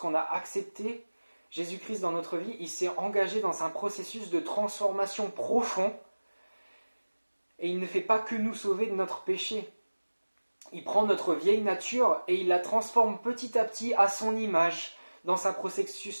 a accepté Jésus-Christ dans notre vie, il s'est engagé dans un processus de transformation profond, et il ne fait pas que nous sauver de notre péché. Il prend notre vieille nature et il la transforme petit à petit à son image dans un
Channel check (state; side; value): inverted; both; correlation -1.00